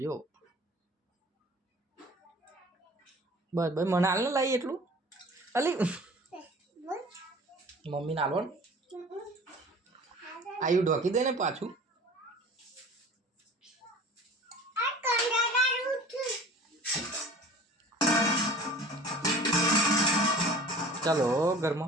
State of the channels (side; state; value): both; normal; correlation 0.44